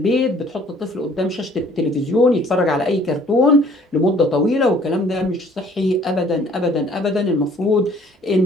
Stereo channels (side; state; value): both; normal; correlation 0.56